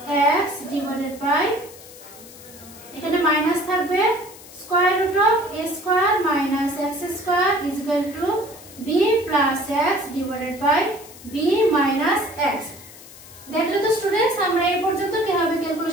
x divided by এখানে মাইনাস থাকবে square root of a square minus x square is equal to b plus x divided by b minus x। দেখলে তো স্টুডেন্টস আমরা এই পর্যন্ত কিভাবে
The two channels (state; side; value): noise; left; hiss, 19 dB below the sound